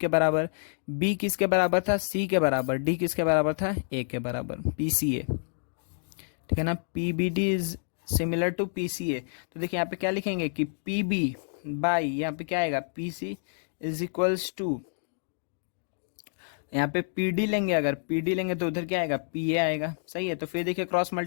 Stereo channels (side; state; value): right; silent; digital silence